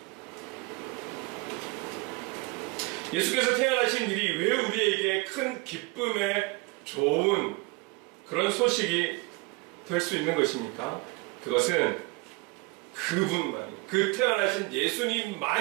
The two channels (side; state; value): left; quieter; 25.5 dB